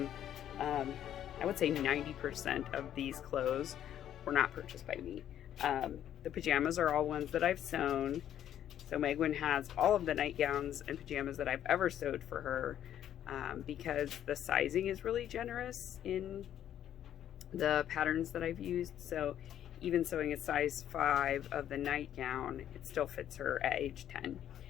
I would say 90% of these clothes were not purchased by me. The pajamas are all ones that I've sewn. So Megwin has all of the nightgowns and pajamas that I've ever sewed for her, because the sizing is really generous in the patterns that I've used. So even sewing a size 5 of the nightgown, it still fits her at age 10.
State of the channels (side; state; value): right; quieter; 10.8 dB